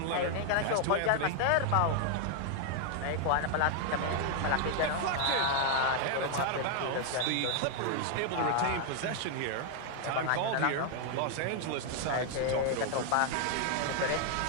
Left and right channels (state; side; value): different; both; correlation 0.00